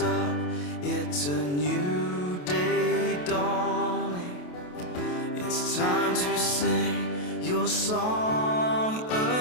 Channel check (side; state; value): right; late; 28 ms